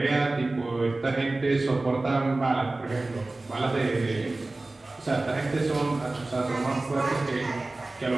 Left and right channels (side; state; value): left; quieter; 3.0 dB